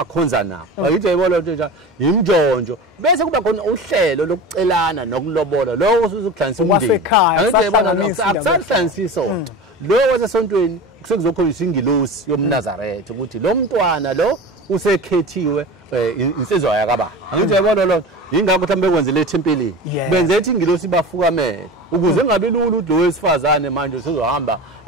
nabo bayithi ayibona into njalo imjonjo bese kuba khona uhlelo lokucelana nokulobola lo usuzukudlanisa umndeni angithi ayibona akusahlanisi isonto lo wasesontweni kusekuzokholiswa ingilosi yomNazaretha ukuthi lo mntwana lo usekhethiwe insizwa yakababa angithi uyabona lo ingakho mhlambe kwenze le thempelini benze ethi ingilosi bafukamele ukuze ngabe lula lo wesifazane manje usezohamba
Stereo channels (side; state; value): both; normal; correlation 0.31